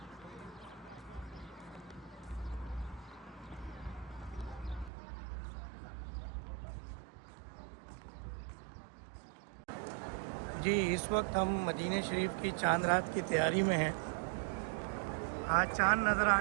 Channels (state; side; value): drops out; left; at 4.9 s